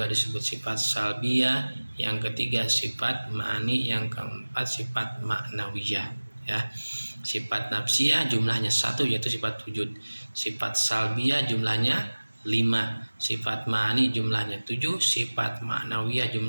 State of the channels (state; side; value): inverted; both; correlation -1.00